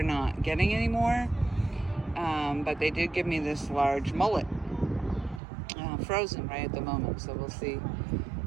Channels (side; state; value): left; drops out; at 5.4 s